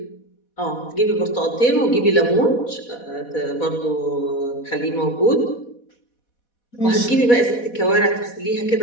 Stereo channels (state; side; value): late; right; 4.1 ms